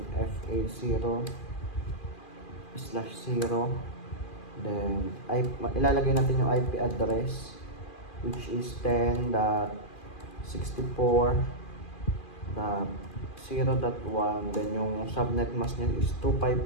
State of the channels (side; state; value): right; late; 2.4 ms